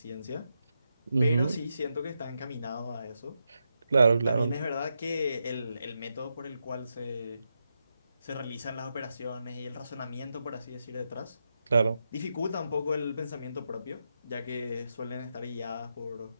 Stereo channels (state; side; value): inverted; both; correlation -0.85